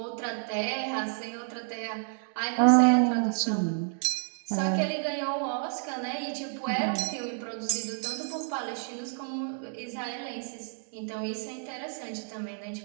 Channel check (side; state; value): left; silent; 58 dB below the other